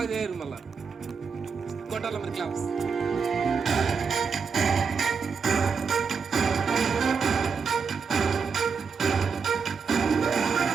చేయరు. మళ్ళా కొట్టాలి మీరు క్లాప్స్.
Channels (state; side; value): quieter; left; 5.7 dB